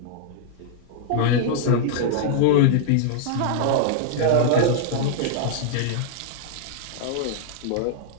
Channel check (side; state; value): both; different; correlation -0.01